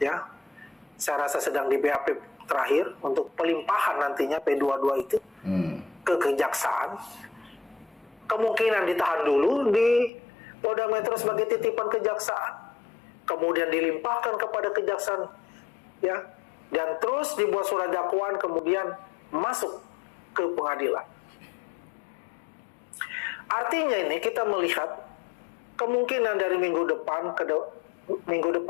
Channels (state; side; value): drops out; right; at 10.1 s